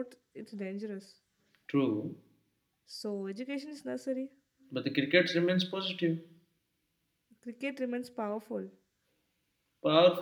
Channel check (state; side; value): identical; both; correlation 1.00